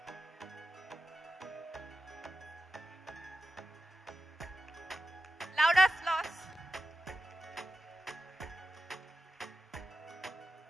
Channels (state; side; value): normal; both; correlation 0.93